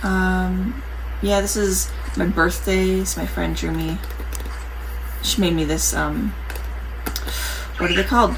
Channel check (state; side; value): identical; both; correlation 1.00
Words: Yeah, this is my birthday, so my friend drew me. She made me this, what are they called?